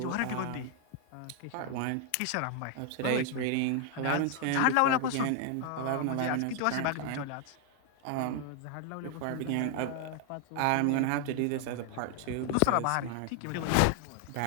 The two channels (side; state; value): both; different; correlation 0.00